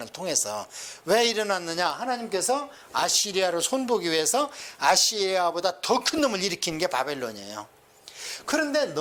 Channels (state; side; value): identical; both; correlation 1.00